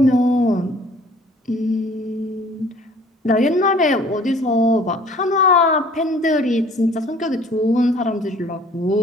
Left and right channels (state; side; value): normal; both; correlation 0.53